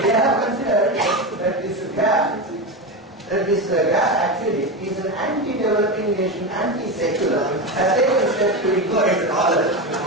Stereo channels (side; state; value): both; normal; correlation 0.18